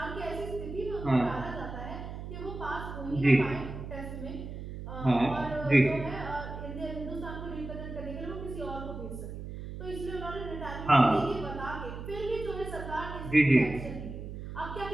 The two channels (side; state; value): right; noise; hum, 9 dB below the sound